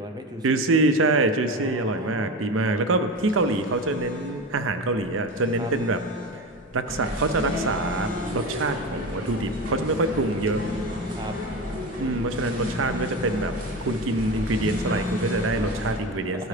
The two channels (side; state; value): both; normal; correlation 0.25